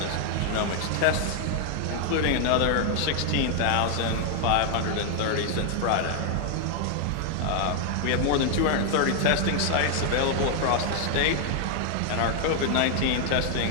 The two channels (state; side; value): different; both; correlation 0.00